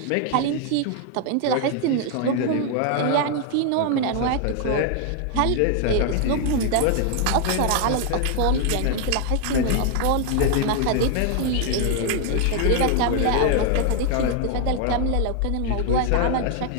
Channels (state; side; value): different; both; correlation 0.00